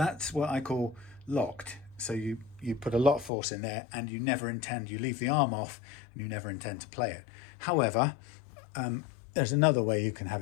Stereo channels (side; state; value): right; drops out; at 3.3 s